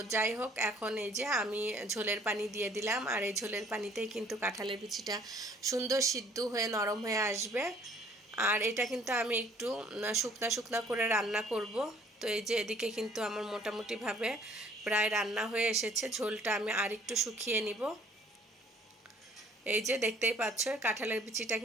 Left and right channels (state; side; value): normal; both; correlation 0.59